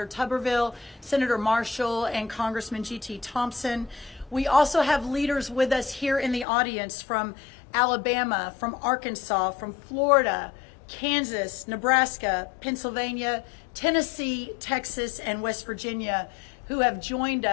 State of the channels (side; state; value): right; drops out; at 6.5 s